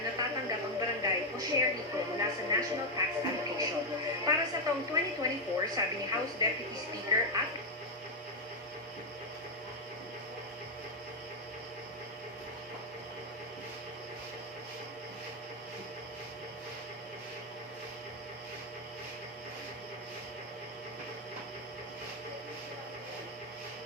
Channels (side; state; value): both; normal; correlation 0.03